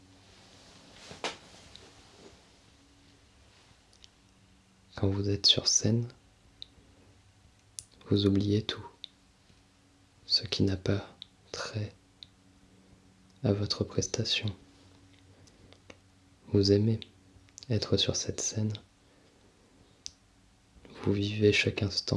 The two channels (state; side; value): identical; both; correlation 1.00